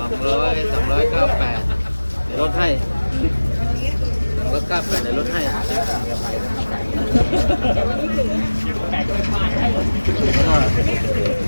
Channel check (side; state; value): both; inverted; correlation -1.00